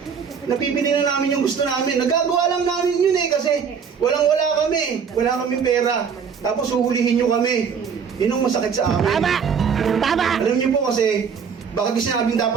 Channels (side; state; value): left; quieter; 6.6 dB